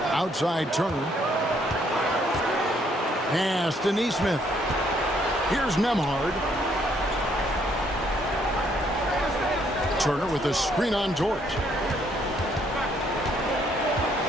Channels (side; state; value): both; normal; correlation 0.68